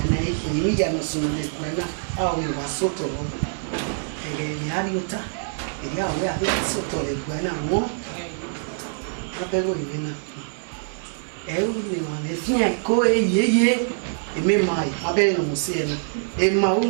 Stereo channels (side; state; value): left; silent; 55 dB below the other